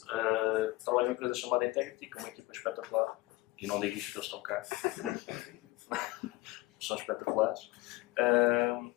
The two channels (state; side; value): quieter; right; 20.0 dB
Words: trabalho numa empresa chamada Integrity, com uma equipa espetacular. E não digo isto porque eles estão cá. São espetaculares.